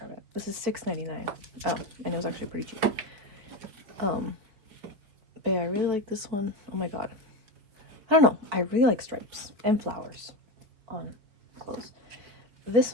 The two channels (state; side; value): late; left; 4.5 ms